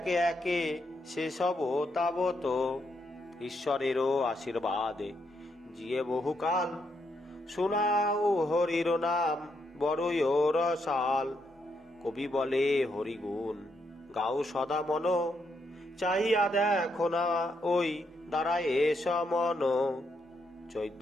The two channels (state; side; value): normal; both; correlation 0.78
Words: একে সে সব তাবত। ঈশ্বরেরও আশীর্বাদে জিয়ে বহুকাল, শোনাও হরির নাম বড়ই রসাল। কবি বলে হরিগুণ গাও সদা মন, চাহিয়া দেখো না ওই দাঁড়ায় সমন।